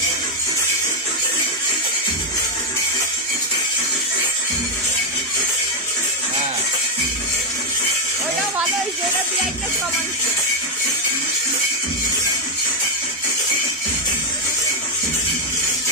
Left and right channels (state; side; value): normal; both; correlation 0.04